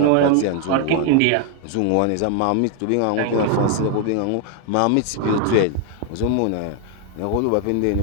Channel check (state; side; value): different; both; correlation 0.01